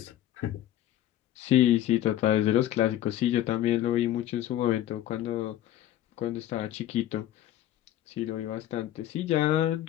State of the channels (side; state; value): right; quieter; 12.7 dB